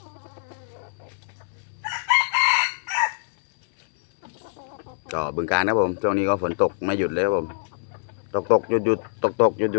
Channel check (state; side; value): silent; right; 62 dB below the other